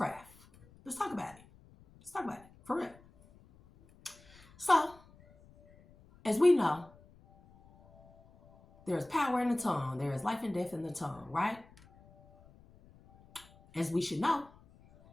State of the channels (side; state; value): left; noise; rumble, 26 dB below the sound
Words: Let's talk about it. Let's talk about it, for real. So, as we know, there is power in the tongue. There is life and death in the tongue, right? As we should know,